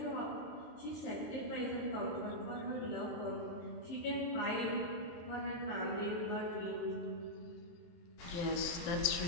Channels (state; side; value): late; right; 23 ms